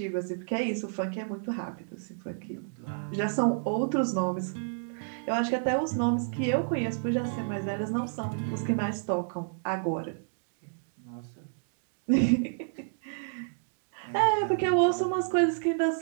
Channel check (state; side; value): silent; left; digital silence